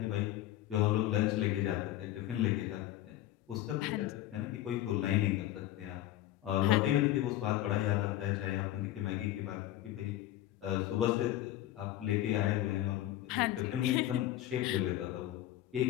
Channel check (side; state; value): right; quieter; 14.1 dB